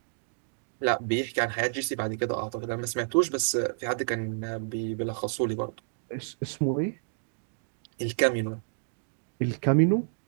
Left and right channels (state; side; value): silent; left; digital silence